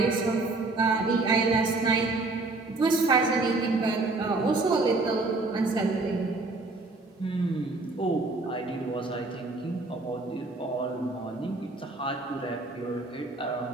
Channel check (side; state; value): left; quieter; 3.3 dB